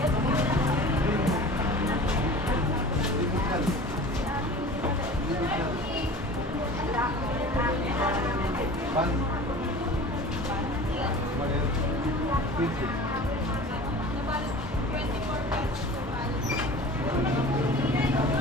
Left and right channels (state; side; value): normal; both; correlation 0.40